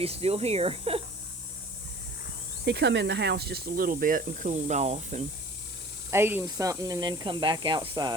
still here. He come in the house just a little bit and cooled off and ate him something and then come back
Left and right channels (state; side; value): normal; both; correlation 0.46